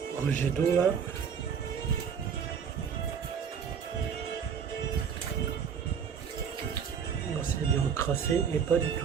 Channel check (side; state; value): left; quieter; 7.1 dB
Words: rejet d'eau là. C'est bien encrassé, mais pas du